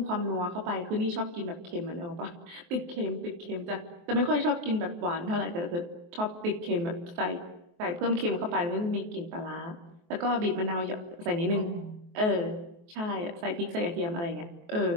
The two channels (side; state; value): left; late; 23 ms